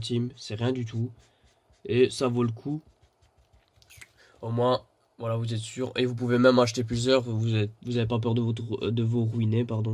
c'est rien du tout. Et ça vaut le coup. Au moins, voilà, vous êtes sûr. Et vous pouvez même acheter plusieurs. Vous avez pas peur de vous ruiner,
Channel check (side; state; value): both; identical; correlation 1.00